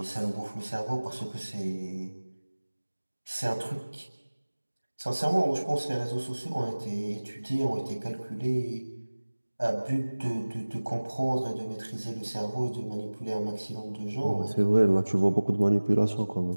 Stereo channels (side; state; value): both; inverted; correlation -1.00